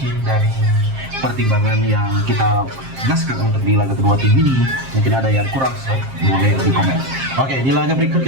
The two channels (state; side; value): late; left; 7.5 ms